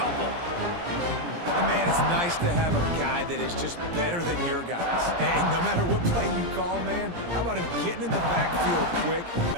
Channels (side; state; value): left; late; 17 ms